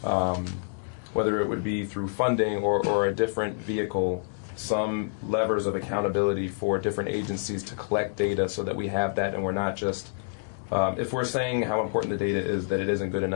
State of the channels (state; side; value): silent; right; digital silence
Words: whether it would be through funding or a different vehicle, some levers of accountability for different agencies to collect data so that we have that and we're not just, if we're saying how important the data is, that it isn't good